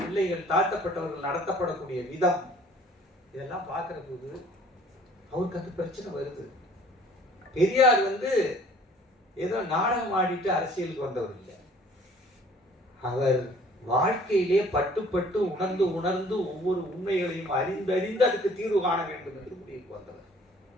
பிள்ளைகள், தாழ்த்தப்பட்டவர்கள் நடத்தப்படக்கூடிய விதம், இதெல்லாம் பார்க்கிற போது அவருக்கு அந்த பிரச்சனை வருது. பெரியார் ஏதோ நாடகம் ஆடிட்டு அரசியலுக்கு வந்தவர் இல்லை. அவர் வாழ்க்கையிலே பட்டு பட்டு உணர்ந்து உணர்ந்து ஒவ்வொரு உண்மைகளையும் அறிந்து அதுக்கு தீர்வு காண வேண்டும் என்று முடிவுக்கு வந்தவர்.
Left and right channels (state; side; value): normal; both; correlation 0.55